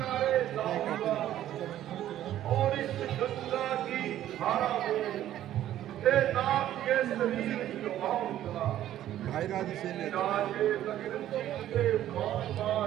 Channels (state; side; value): quieter; left; 12.4 dB